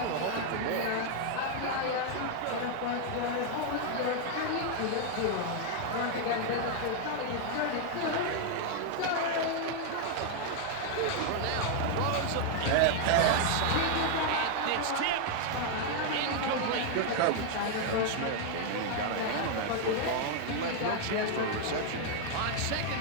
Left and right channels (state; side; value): different; both; correlation 0.00